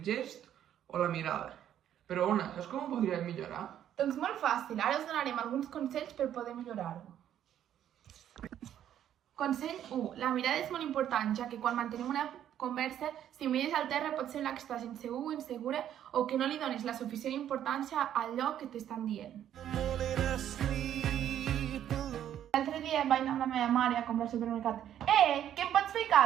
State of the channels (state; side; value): quieter; left; 10.6 dB